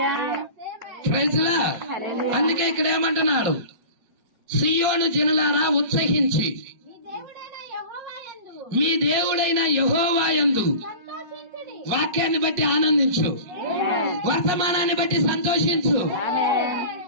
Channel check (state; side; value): late; left; 4.9 ms